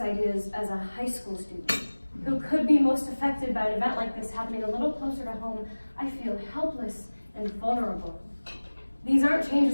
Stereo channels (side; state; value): both; inverted; correlation -1.00